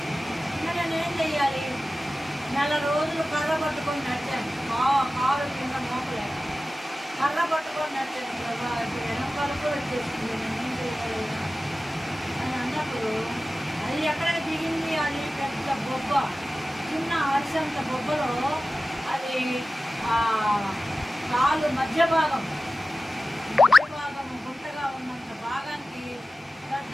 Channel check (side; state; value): both; normal; correlation 0.95